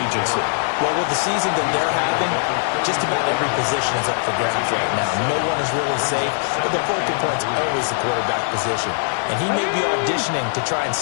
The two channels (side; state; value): right; silent; digital silence